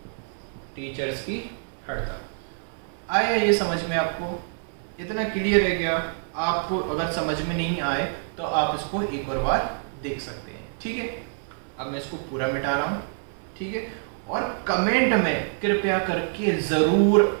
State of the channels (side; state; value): left; silent; 59 dB below the other